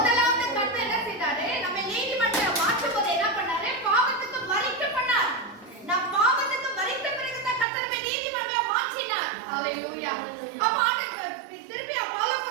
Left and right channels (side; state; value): left; drops out; at 7.7 s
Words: கர்த்தர் என்ன செய்தாரு? நம்ம நீதிமன்றம் மாற்றும் போது என்ன பண்ணாரு? பாவத்துக்கு மரிக்க பண்ணார். நான் பாவத்துக்கு மரித்த பிறகு தான் கர்த்தர் நம்ம நீதிமன்றம் மாற்றினார். ஹalleluya. அப்ப ஆண்டவர் திருப்பி